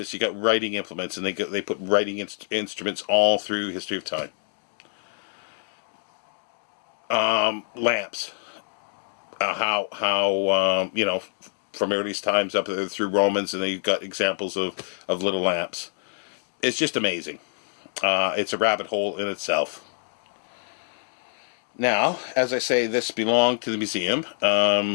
you got writing implements, and they put writing instruments all through history of time. Lamps. From earliest times up through Romans, and they've got examples of little lamps. It's just amazing. It's a rabbit hole in itself. Now, as I say, this belonged to the museum,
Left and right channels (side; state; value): right; silent; digital silence